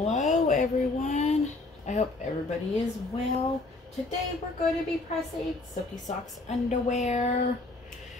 everyone, I hope everybody is well. Today we're going to be pressing Silky Socks underwear.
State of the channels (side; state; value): right; quieter; 3.1 dB